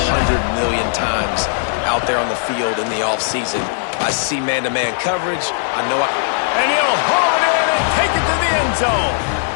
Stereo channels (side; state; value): right; silent; 64 dB below the other